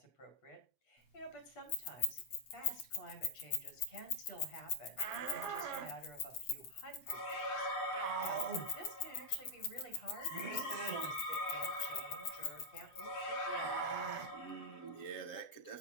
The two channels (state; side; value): late; right; 7.9 ms